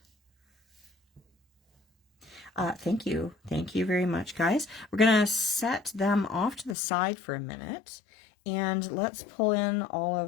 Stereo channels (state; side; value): drops out; right; at 6.8 s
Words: Thank you very much, guys. We're gonna set them off to the side for a minute, and let's pull in all